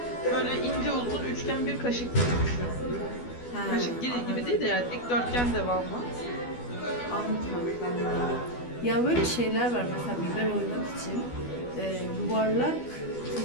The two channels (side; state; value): right; late; 12 ms